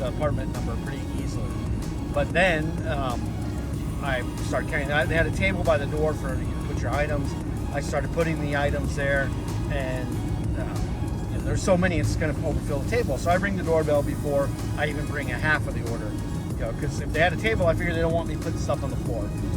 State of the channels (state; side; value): identical; both; correlation 1.00